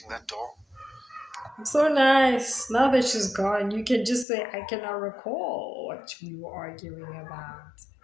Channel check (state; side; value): drops out; right; at 4.2 s